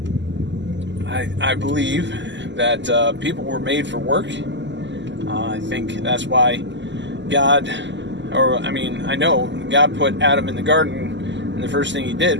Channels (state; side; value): late; left; 0.53 ms